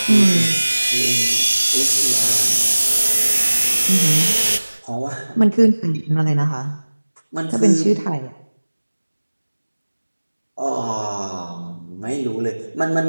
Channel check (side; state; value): both; inverted; correlation -1.00